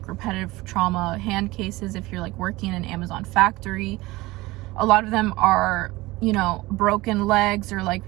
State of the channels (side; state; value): left; quieter; 20.2 dB